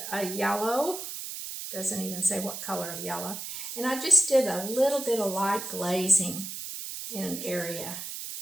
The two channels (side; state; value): right; noise; hiss, 7 dB below the sound